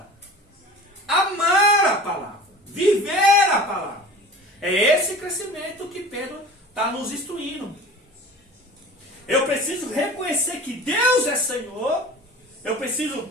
amar a palavra, viver a palavra. É esse crescimento que Pedro está nos instruindo. Eu preciso reconhecer que Deus é Senhor. Eu preciso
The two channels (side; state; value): both; normal; correlation 0.39